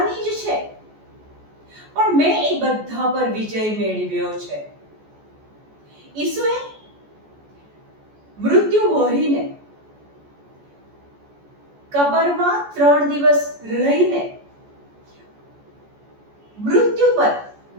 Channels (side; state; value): left; late; 14 ms